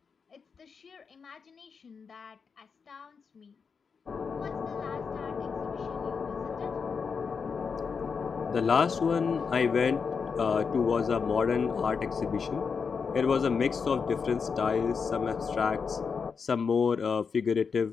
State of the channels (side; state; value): right; quieter; 5.7 dB